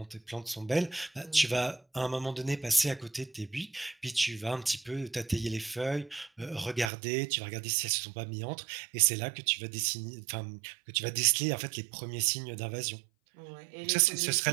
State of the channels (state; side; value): drops out; left; at 6.9 s